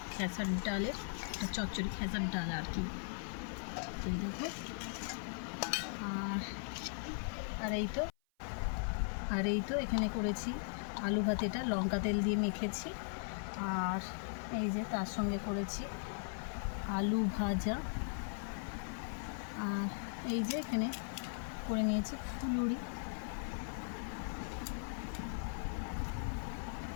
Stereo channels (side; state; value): right; silent; 52 dB below the other